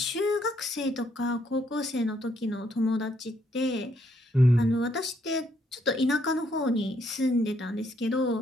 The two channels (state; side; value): normal; both; correlation 0.72